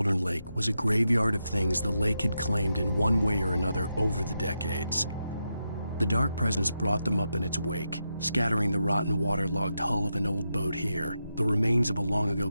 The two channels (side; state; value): both; inverted; correlation -0.86